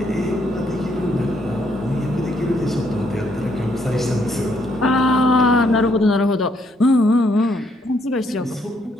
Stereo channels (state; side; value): normal; both; correlation 0.72